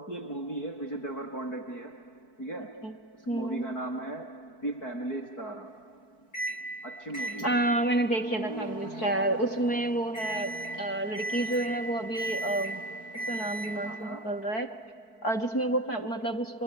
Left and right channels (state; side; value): late; right; 4.6 ms